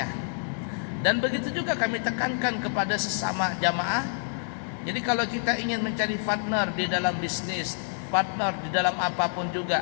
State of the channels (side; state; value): right; silent; digital silence